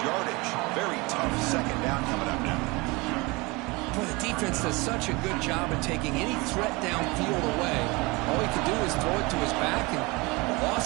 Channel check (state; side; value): quieter; left; 25.0 dB